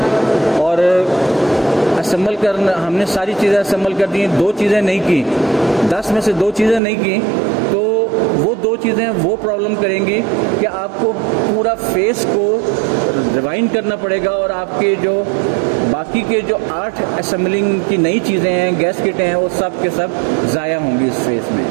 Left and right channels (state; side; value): drops out; left; at 6.8 s